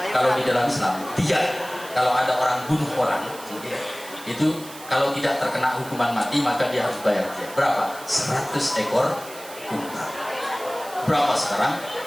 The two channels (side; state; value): right; noise; hiss, 16 dB below the sound